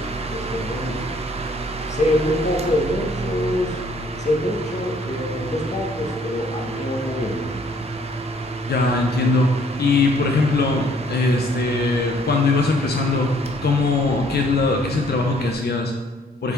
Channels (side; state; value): both; normal; correlation 0.61